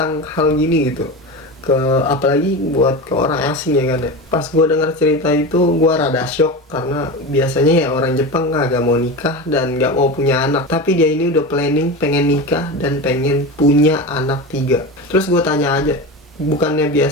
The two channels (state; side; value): normal; both; correlation 0.25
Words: hal gini gitu. Apalagi buat ke orang asing ya kan ya. Pas gue denger cerita itu gue rada shock, karena biasanya ya orang Jepang gak mau nikah dan gak mau punya anak. Tapi dia ini udah planning pengen nikah dan pengen punya anak 3. Terus gue tanya aja, bukannya